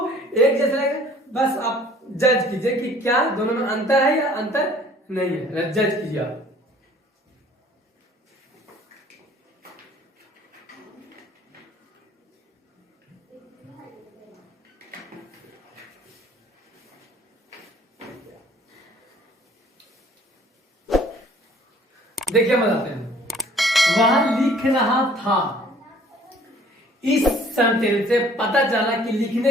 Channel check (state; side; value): normal; both; correlation 0.54